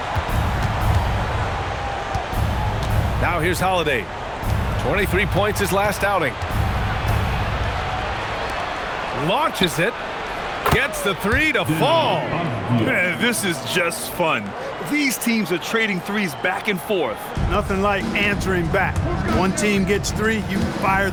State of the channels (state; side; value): identical; both; correlation 1.00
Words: Now here's Holiday. 23 points his last outing. Launches it. Gets the 3 to fall. Man, this is just fun. These teams are trading threes back and forth. Nothing like answering back. One team gets 3, you fire